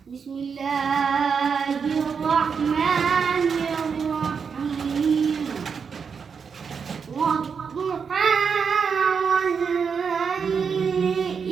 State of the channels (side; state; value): left; quieter; 6.1 dB